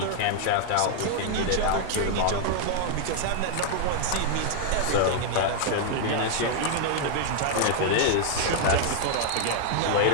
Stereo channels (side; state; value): both; different; correlation 0.00